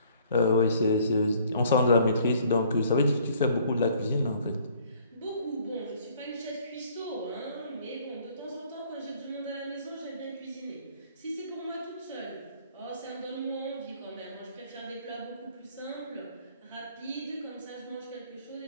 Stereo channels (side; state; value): both; inverted; correlation -0.59